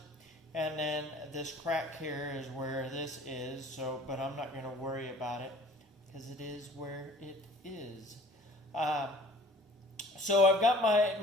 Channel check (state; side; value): normal; both; correlation 0.50